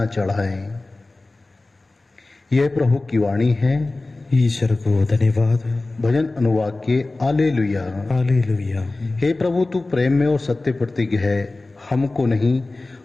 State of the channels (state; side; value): quieter; right; 3.1 dB